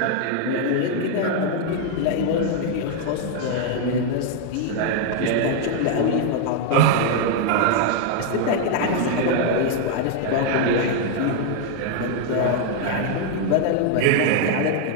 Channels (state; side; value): different; both; correlation 0.00